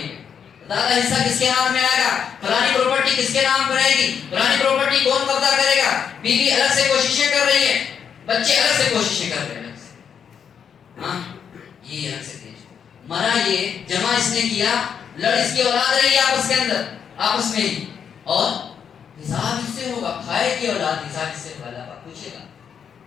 میں، زیادہ حصہ کس کے ہاتھ میں آئے گا، فلانی پراپرٹی کس کے نام پر رہے گی، فلانی پراپرٹی کون قبضہ کرے گا. بیوی الگ سے کوششیں کر رہی ہے، بچے الگ سے کوششیں کر رہے ہیں. ہاں یہ الگ سے مرا، یہ جمع اس نے کیا، لڑ اس کی اولاد رہی آپس کے اندر، آپس میں ہی، اور حساب اس سے ہوگا. کھائے کی اولاد حساب اس سے ہوگا. اللہ پوچھے گا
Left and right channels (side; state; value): right; quieter; 7.5 dB